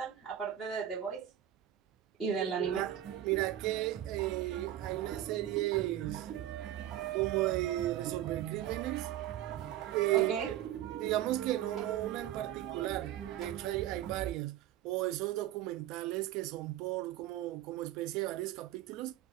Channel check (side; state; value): left; quieter; 12.5 dB